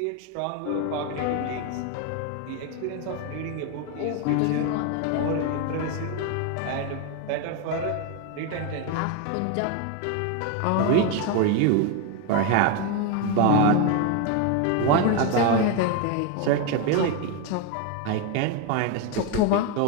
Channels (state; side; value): different; both; correlation 0.02